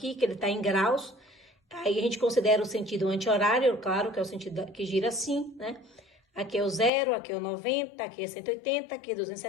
que ele está em graus. Aí a gente considera o sentido anti-horário, claro, que é o sentido que gira assim, né? Aqui é o 0, aqui é o 90, aqui é 180, aqui é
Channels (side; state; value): right; drops out; at 6.9 s